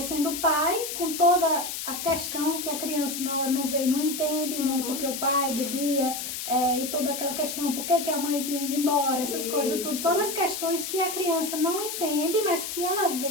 pai, com toda a questão que a criança na hora não vê e não entende, né? Porque o pai bebia, e toda aquela questão, por que a mãe tinha ido embora, essas coisas, tudo. Todas as questões que a criança não entende, mas que ela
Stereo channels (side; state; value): left; noise; hiss, 5 dB below the sound